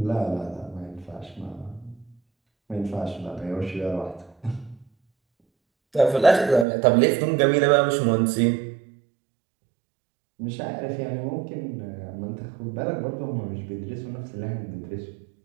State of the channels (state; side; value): drops out; left; at 6.7 s